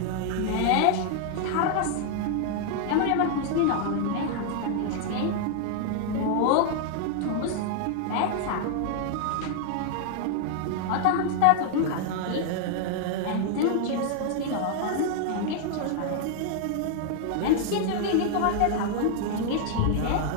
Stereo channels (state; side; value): different; both; correlation 0.00